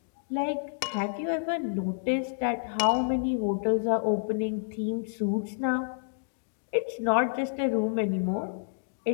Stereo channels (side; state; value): right; silent; digital silence